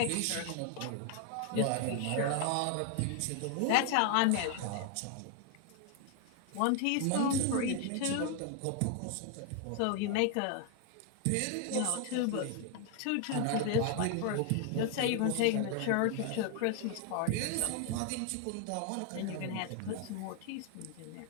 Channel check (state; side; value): different; both; correlation 0.00